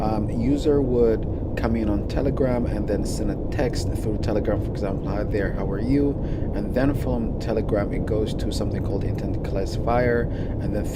user would come in on Telegram and then send a text through Telegram, for example, hi there, how are you? And then from Telegram it goes to something called intent classifier, and then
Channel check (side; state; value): both; identical; correlation 1.00